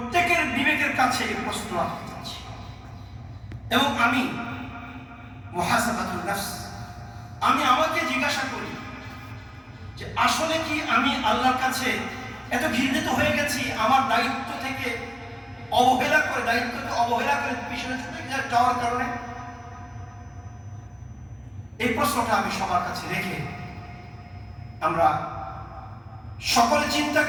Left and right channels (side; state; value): both; identical; correlation 1.00